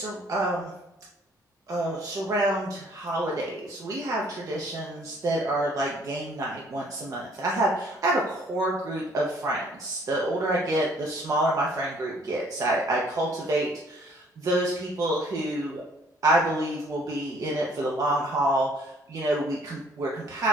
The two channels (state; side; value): normal; both; correlation 0.59